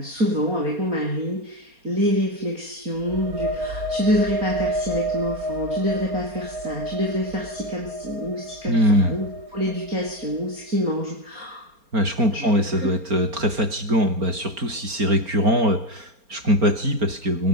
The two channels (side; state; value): left; late; 4.3 ms